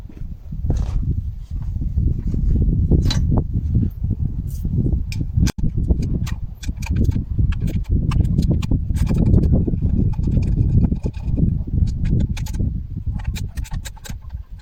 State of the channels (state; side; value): identical; both; correlation 1.00